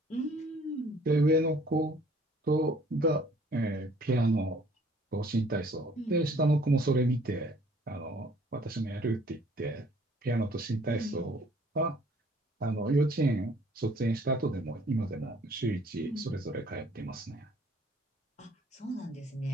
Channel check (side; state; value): both; normal; correlation 0.57